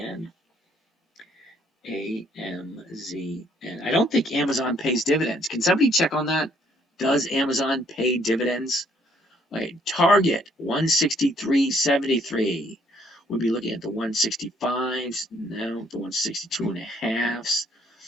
AMZN. I don't think Amazon pays dividends. Can somebody check on that? Does Amazon pay dividends? Right, Target 163.73. We'll be looking at the 165s, now the 162 and a halves.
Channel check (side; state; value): both; normal; correlation 0.66